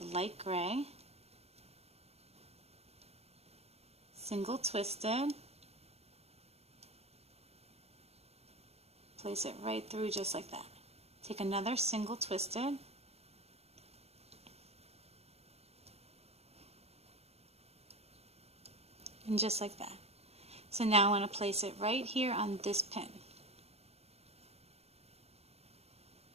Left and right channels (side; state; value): left; late; 0.30 ms